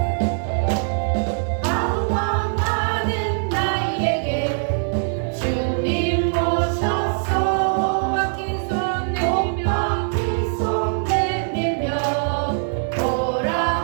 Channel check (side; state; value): left; silent; 58 dB below the other